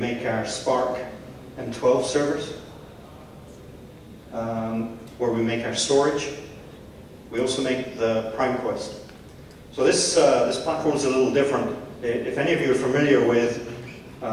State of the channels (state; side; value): identical; both; correlation 1.00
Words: our Spark M12 servers, where we make our storage. We also make the PrimeQuest. So this platform is a little different. If any of you are familiar with